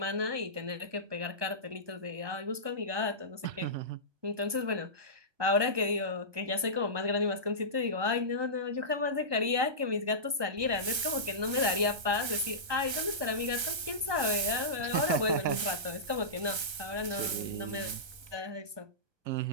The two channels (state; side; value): late; left; 1.3 ms